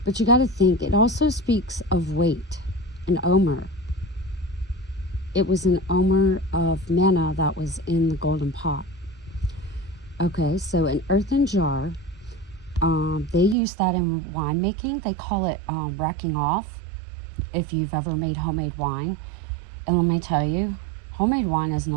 But you got to think, it also speaks of weight, an omer. It was an omer of manna that was in the golden pot. Okay, so an earthen jar, they use that in winemaking. They call it racking off, if you've ever made homemade wine. And let me tell you, homemade wine is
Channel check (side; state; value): left; drops out; at 13.6 s